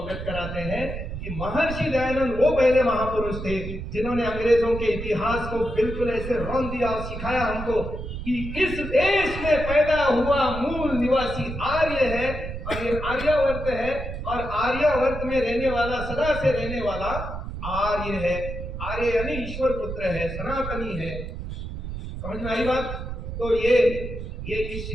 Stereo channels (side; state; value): right; noise; rumble, 7 dB below the sound